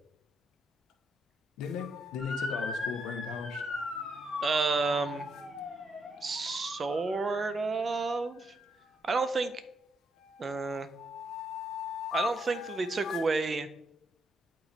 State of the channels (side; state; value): both; normal; correlation 0.77